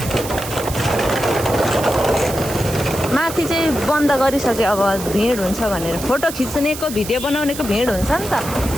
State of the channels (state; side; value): noise; right; hiss, 10 dB below the sound